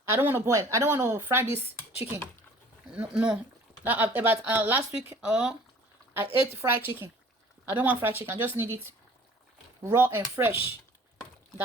I don't want to boil. I don't want to fry this chicken. No. About last week, I ate fried chicken. I don't want fried chicken. I just need it raw and fresh,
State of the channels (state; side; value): normal; both; correlation 0.50